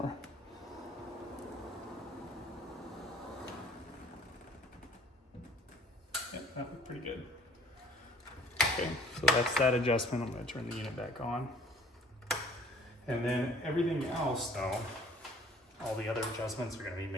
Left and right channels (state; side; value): normal; both; correlation 0.54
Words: Yeah, that looked pretty good. Okay, so that's that adjustment. I'm gonna turn the unit back on. And then everything else though, all the other adjustments are gonna be